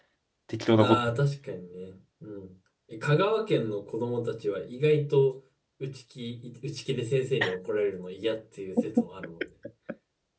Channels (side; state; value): both; identical; correlation 1.00